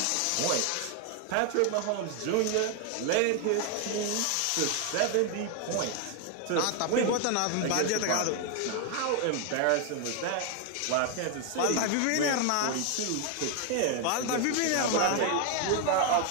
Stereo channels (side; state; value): both; different; correlation 0.01